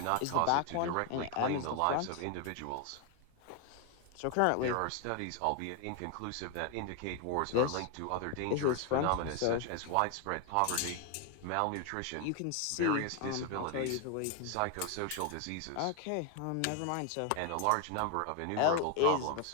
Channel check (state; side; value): different; both; correlation 0.01